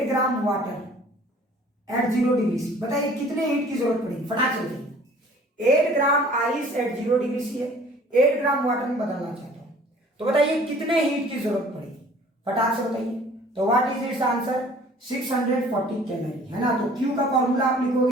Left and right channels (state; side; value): normal; both; correlation 0.52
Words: gram water at 0 degree C, बताइए कितने हीट की जरूरत पड़ेगी? फटाक से बताइए। 8 gram ice at 0 degree C है, 8 ग्राम वाटर में बदलना चाहता हूं, तो बताइए कितने हीट की जरूरत पड़ेगी? फटाक से बताइए। तो what is it's answer? 640 calorie, है ना। तो Q का फॉर्मूला आप